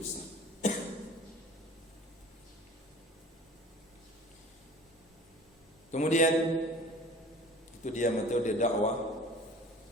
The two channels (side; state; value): both; normal; correlation 0.44